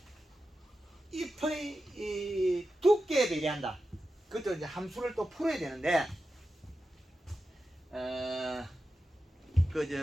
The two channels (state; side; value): normal; both; correlation 0.91